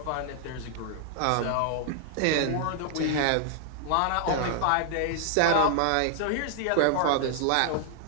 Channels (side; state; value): both; different; correlation 0.00